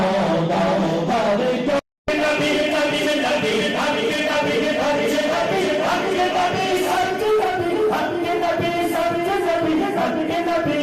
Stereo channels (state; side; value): identical; both; correlation 1.00